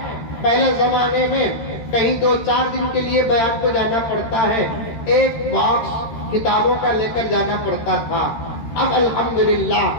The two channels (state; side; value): late; right; 13 ms